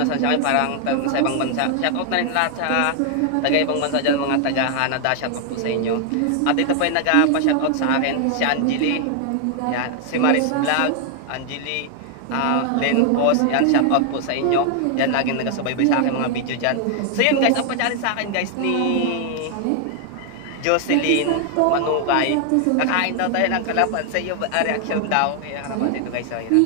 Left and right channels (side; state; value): both; different; correlation 0.00